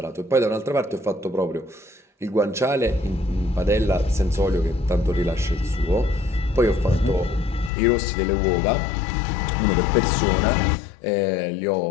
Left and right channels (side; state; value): right; drops out; at 7.7 s